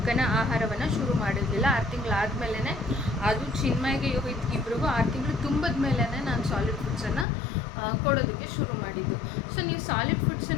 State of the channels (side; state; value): right; drops out; at 7.2 s